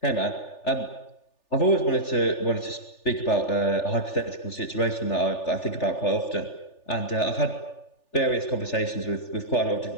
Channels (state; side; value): late; right; 3.4 ms